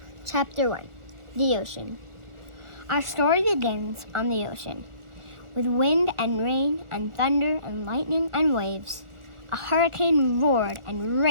Chapter 1. The Ocean. Our story begins on the ocean, with wind and rain and thunder and lightning and waves. A hurricane roared and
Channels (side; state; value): left; late; 1.4 ms